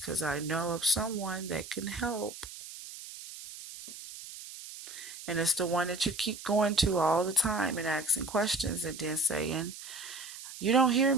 I know of someone that can help. And it's the one that you keep going to all the time and asking questions and then saying, "You don't hear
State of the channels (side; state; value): right; noise; hiss, 13 dB below the sound